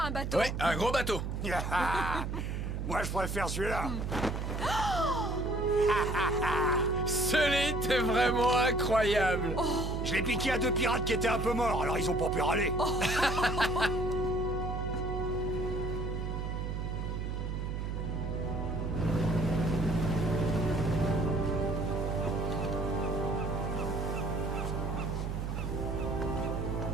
un bateau. Ouais, un gros bateau. Moi, je préfère celui-là. Sully, t'es vraiment incroyable. Je l'ai piqué à 2 pirates qui étaient un peu morts, alors ils ont pas pu râler.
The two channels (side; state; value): right; noise; hum, 3 dB below the sound